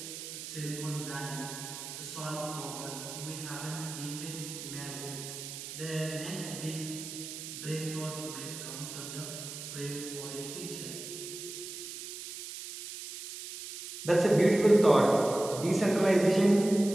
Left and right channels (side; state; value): right; noise; hiss, 9 dB below the sound